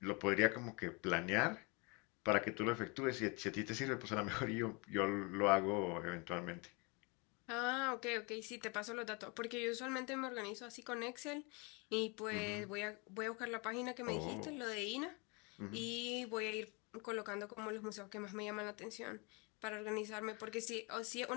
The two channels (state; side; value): quieter; right; 30.3 dB